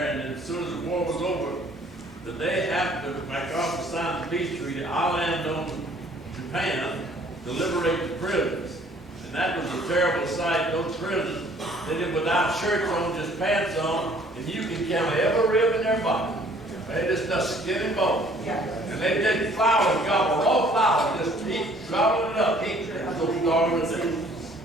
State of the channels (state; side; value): noise; left; rumble, 27 dB below the sound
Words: and as soon as the war was over, the day after MacArthur signed the peace treaty, I landed on Japan to liberate the prisoners. And that was a terrible sight. Those prisoners, they did without shirts on, just pants on, and you can count every rib in their body. They just skin and bone. And they did flowers, gobble, raw flowers, just eat, gobble it up, eat. So starving to death.